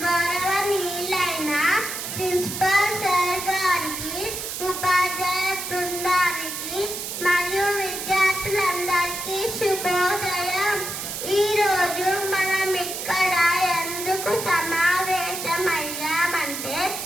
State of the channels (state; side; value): noise; right; hiss, 6 dB below the sound